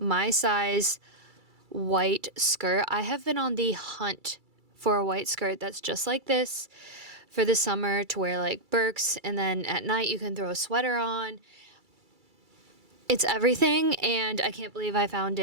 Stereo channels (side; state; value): left; late; 2.3 ms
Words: size white skirt. I have been on the hunt for a white skirt that's just like this for the summer to wear like Birks, and then at night you can throw a sweater on. It's everything, and I can't believe I found